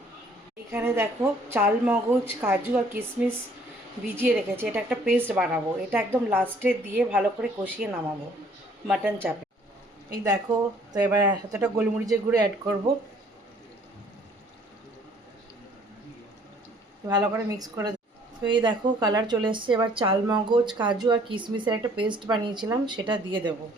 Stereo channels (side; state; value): both; normal; correlation 0.59